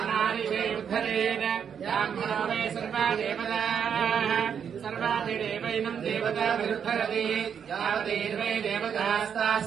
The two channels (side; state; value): left; quieter; 7.6 dB